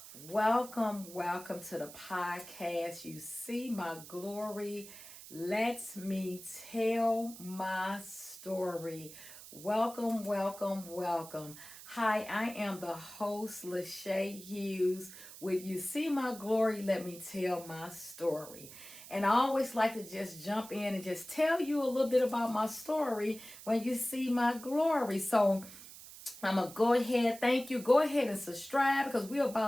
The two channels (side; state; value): right; noise; hiss, 15 dB below the sound